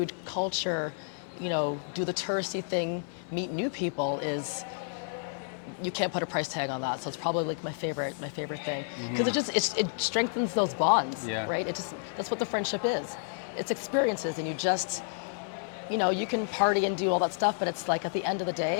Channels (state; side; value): silent; right; 58 dB below the other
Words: culture, you know, do the touristy thing, meet new people is, you can't put a price tag on that. So it's probably like my favorite thing. Because it strengthens those bonds, Yeah. right? That's what the friendship is. It's experiences, and you just, you know, you can party and do all that stuff, but it's like at the end of the